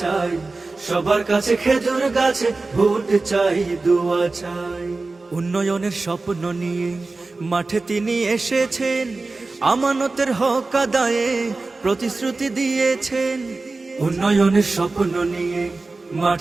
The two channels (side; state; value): left; quieter; 3.6 dB